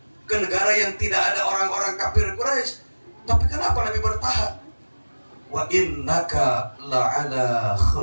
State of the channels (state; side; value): inverted; both; correlation -1.00